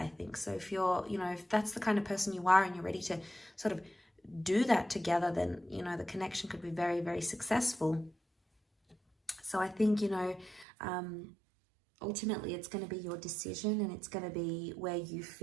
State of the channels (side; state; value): left; drops out; at 10.7 s